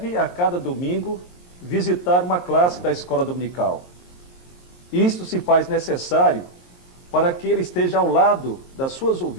a cada domingo, visitar uma classe da escola dominical. Isto se faz necessário para que ele esteja ao lado das suas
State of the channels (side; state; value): right; late; 22 ms